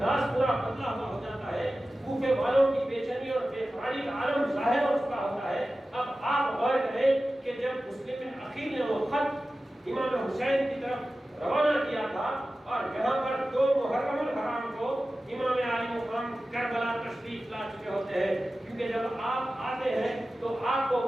پورا بدلا ہوا ہو جاتا ہے، کوفے والوں کی بے چینی اور بے قراری کا عالم ظاہر ہو چکا ہوتا ہے۔ اب آپ غور کریں کہ جب مسلم عقیل نے وہ خط امام حسین کی طرف روانہ کیا تھا اور یہاں پر 2 محرم الحرام کو امام علی مقام کربلا تشریف لا چکے ہوتے ہیں، کیونکہ جب آپ آتے ہیں تو آپ کو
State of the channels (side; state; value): both; normal; correlation 0.95